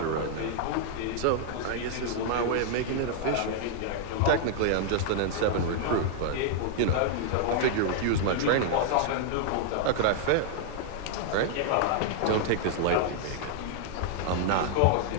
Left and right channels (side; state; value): both; different; correlation -0.01